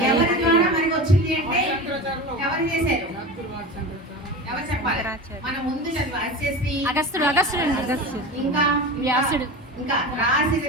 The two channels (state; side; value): normal; both; correlation 0.29